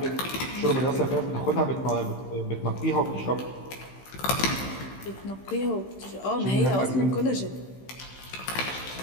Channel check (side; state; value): right; late; 15 ms